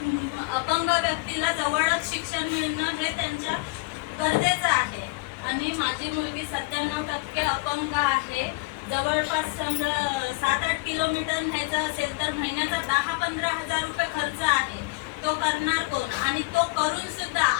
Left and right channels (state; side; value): quieter; right; 25.3 dB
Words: अपंग व्यक्तीला जवळच शिक्षण मिळणं हे त्यांच्या गरजेचं आहे आणि माझी मुलगी 97% अपंग आहे. जवळपास समजा 7-8 किलोमीटर न्यायचं असेल तर महिन्याचा 10-15 हजार रुपये खर्च आहे. तो करणार कोण? आणि तो करून सुद्धा